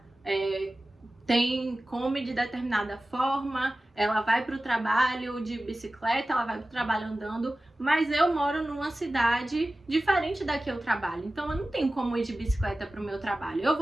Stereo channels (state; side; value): normal; both; correlation 0.96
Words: come de determinada forma, ela vai para o trabalho de bicicleta, ela vai para o trabalho andando, mas eu moro numa cidade diferente da que eu trabalho, então eu não tenho como ir de bicicleta para o meu trabalho. Eu